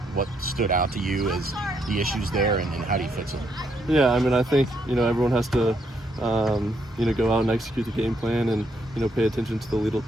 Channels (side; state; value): both; normal; correlation 0.75